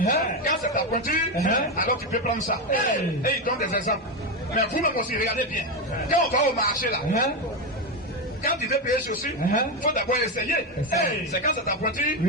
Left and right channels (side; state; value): both; normal; correlation 0.11